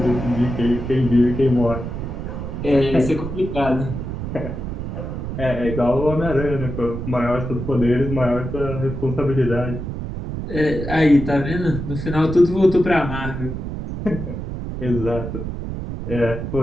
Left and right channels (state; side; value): noise; right; rumble, 6 dB below the sound